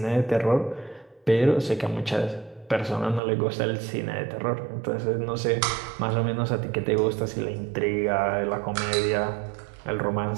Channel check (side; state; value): left; drops out; at 3.2 s